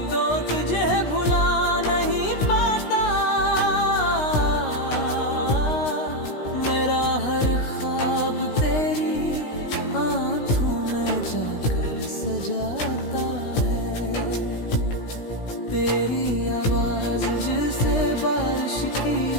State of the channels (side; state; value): right; late; 16 ms